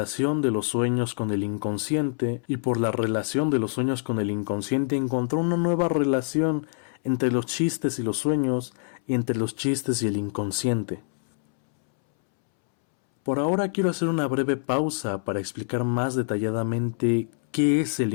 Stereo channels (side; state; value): right; silent; 61 dB below the other